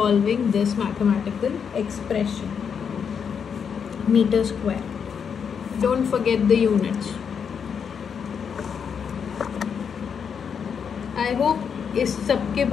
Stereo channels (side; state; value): right; quieter; 6.9 dB